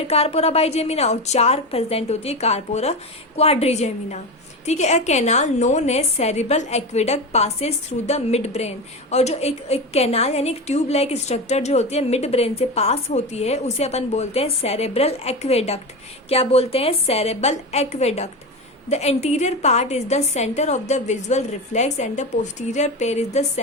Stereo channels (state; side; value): normal; both; correlation 0.21